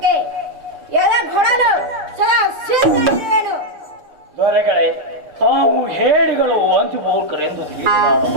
ಎದೆಗೊಡಲು ಸದಾ ಸಿದ್ಧರಿರುವೆನು. ದೊರೆಗಳೇ, ತಾವು ಹೇಳಿಗಳು ಅಂಚುಬೋಲ್ಕರೆಂದು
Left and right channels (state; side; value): late; left; 6.7 ms